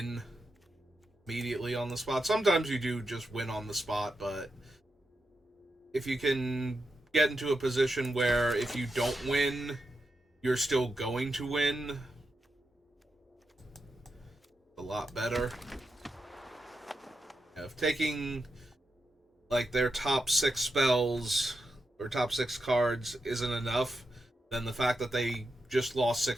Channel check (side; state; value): both; normal; correlation 0.87